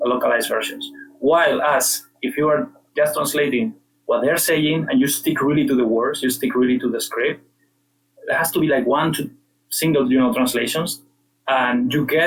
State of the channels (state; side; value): identical; both; correlation 1.00